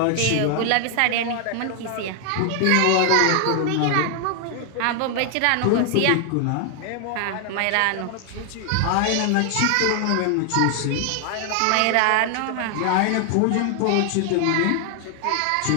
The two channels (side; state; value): both; different; correlation 0.00